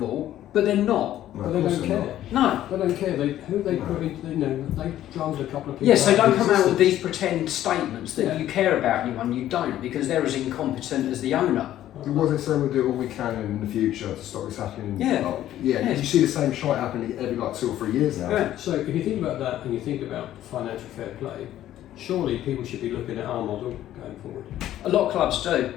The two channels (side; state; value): right; quieter; 12.7 dB